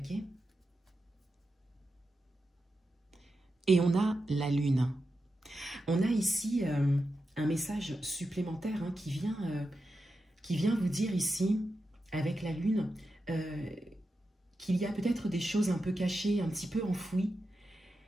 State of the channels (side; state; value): both; normal; correlation 0.89